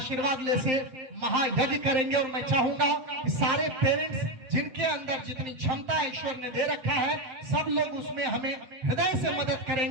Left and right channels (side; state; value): left; late; 8.0 ms